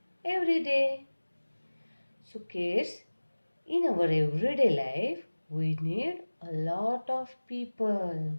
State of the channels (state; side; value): inverted; both; correlation -1.00